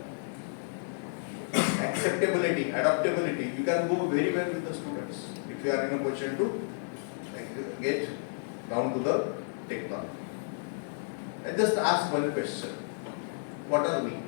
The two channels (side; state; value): right; silent; 57 dB below the other